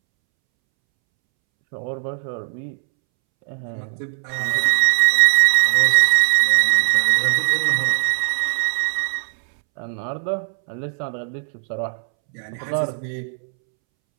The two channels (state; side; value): silent; left; 66 dB below the other